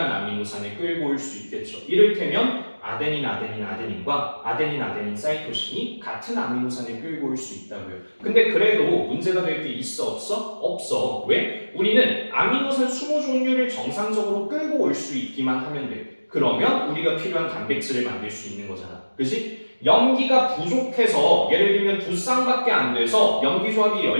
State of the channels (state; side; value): inverted; both; correlation -1.00